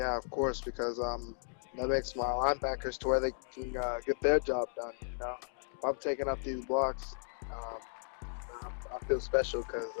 of course, because that makes my linebackers to where they can get their job done, If I'm taking up these blocks, I feel special because,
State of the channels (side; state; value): right; silent; digital silence